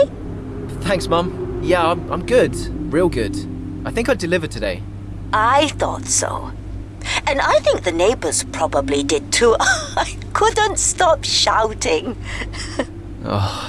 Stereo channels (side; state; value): both; identical; correlation 1.00